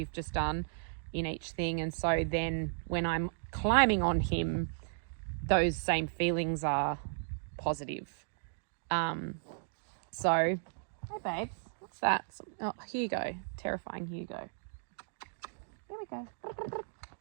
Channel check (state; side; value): silent; left; digital silence